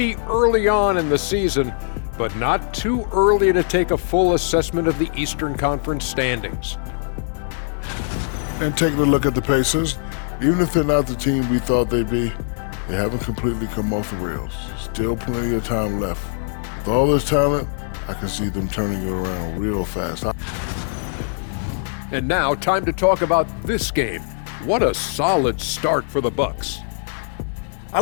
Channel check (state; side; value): silent; right; digital silence